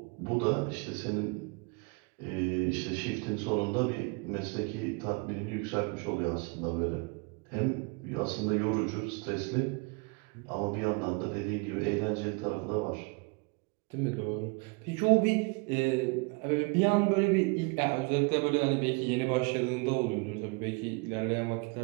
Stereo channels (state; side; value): quieter; left; 30.8 dB